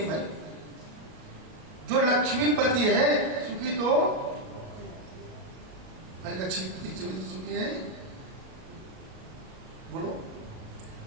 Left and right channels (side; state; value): left; late; 37 ms